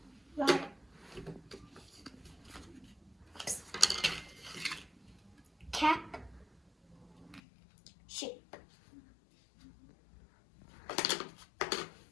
Water. Cap. Sheep.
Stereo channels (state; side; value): drops out; right; at 7.4 s